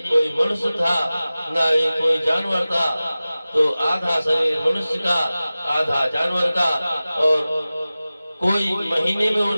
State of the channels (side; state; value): both; inverted; correlation -0.97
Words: कोई मनुष्य था, ना ही कोई जानवर था। तो आधा शरीर मनुष्य का, आधा जानवर का, और कोई महीने में वो